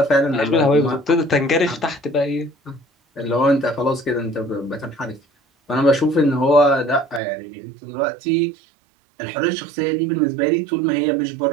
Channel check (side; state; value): left; drops out; at 7.2 s